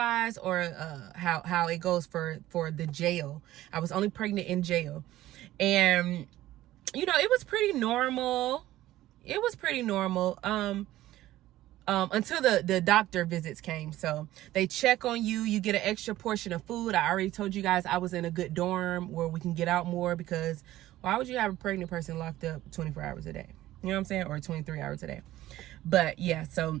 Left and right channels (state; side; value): quieter; left; 15.1 dB